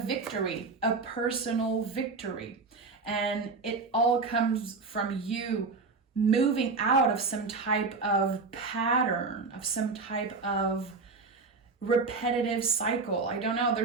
a personal victory. And it all comes from you moving out of some type of pattern, of some type of repetitive cycle. I don't know.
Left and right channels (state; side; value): quieter; left; 4.2 dB